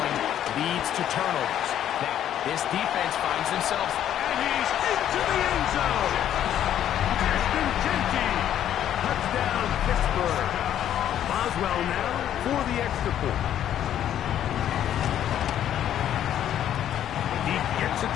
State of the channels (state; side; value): quieter; right; 10.8 dB